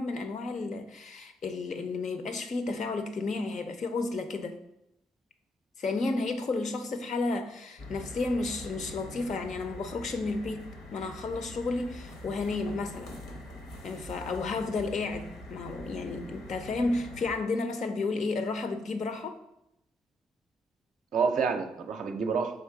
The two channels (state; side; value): normal; both; correlation 0.75